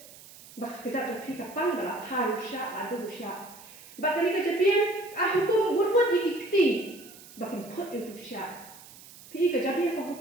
Bak kejat jong pi ka pang bala thai syah adu syah. Bak kani ka jabi hukum wut ikti, bakin phut itu syah. Pi ka jabi ka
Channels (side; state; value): right; noise; hiss, 19 dB below the sound